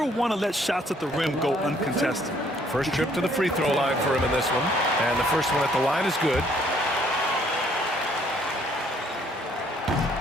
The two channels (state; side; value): normal; both; correlation 0.64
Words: want to let shots at the rim go uncontested. First trip to the free throw line for him in this one. And the first one at the line is good.